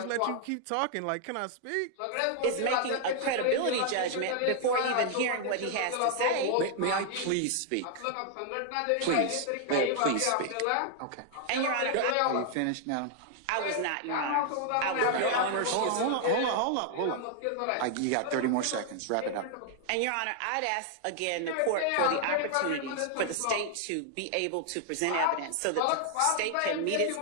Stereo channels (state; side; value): different; both; correlation 0.00